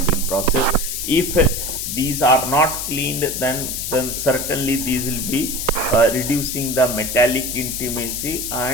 process. If these are not cleaned, then certainly these will be reducing the metallic intimacy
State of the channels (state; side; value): noise; left; hiss, 4 dB below the sound